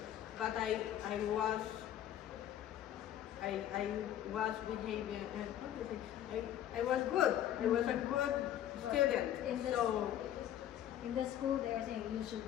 but I was behaving. How do you say? I was good. I was a good student. In the, So. in the school, they are saying you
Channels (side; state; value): right; quieter; 11.5 dB